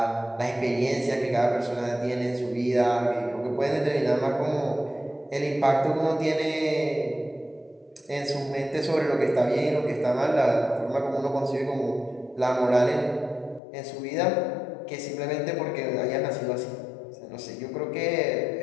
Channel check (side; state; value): right; drops out; at 13.6 s